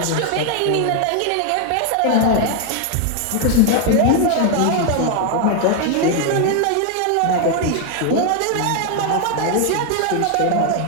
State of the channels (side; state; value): both; different; correlation 0.01